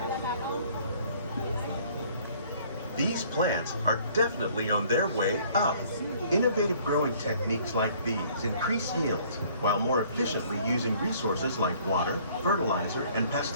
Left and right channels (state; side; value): inverted; both; correlation -0.57